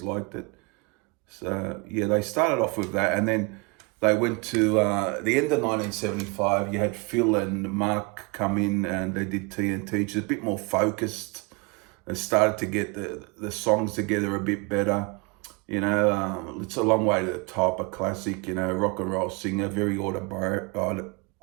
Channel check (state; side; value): quieter; left; 29.2 dB